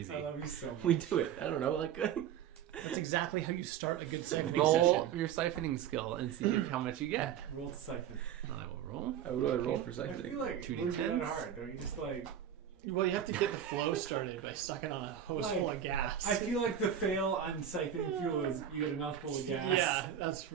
I love you so much. We do it. I don't know, like That's exactly how you start a good siphoning Roll session. your siphoning skill and see how much you get. Roll to siphon. I will roll. I would roll for I siphoning. feel like it 2d10s. wouldn't be that hard. Don't you just like? Well, you have to get the flow started by sucking on a hose Like, full of gas. I feel like the fail on siphoning fuel is you get a mouthful of gas. Yeah, that's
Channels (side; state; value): left; quieter; 9.5 dB